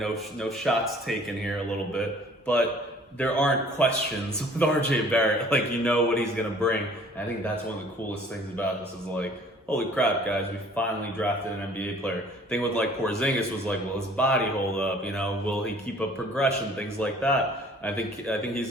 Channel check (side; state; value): both; normal; correlation 0.53